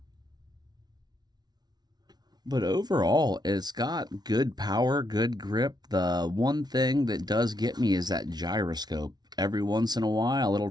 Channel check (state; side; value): late; left; 0.19 ms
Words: But overall, it's got good power, good grip. The one thing that does get me is that gyroscope. Every once in a while, it'll